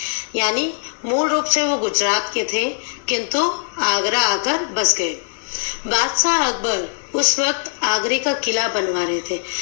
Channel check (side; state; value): right; silent; 62 dB below the other